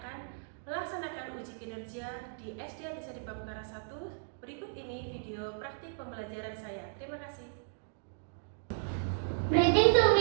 melaksanakan uji kinerja di SD Atisa di Pamekaran 1. Berikut ini video praktik pembelajaran saya. Terima kasih. Greeting to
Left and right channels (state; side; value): silent; left; digital silence